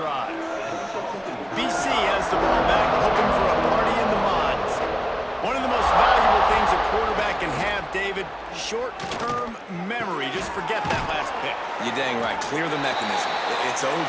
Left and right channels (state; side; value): identical; both; correlation 1.00